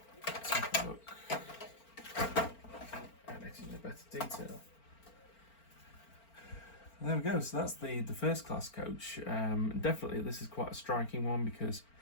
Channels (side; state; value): right; late; 4.4 ms